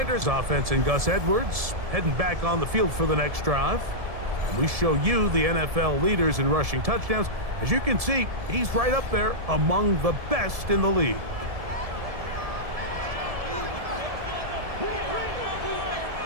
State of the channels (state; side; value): late; left; 1.7 ms